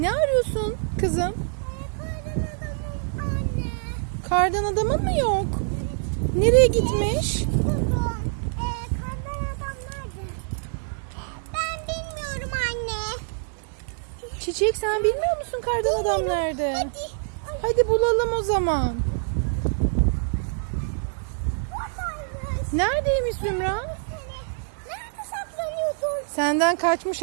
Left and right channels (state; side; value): silent; left; 61 dB below the other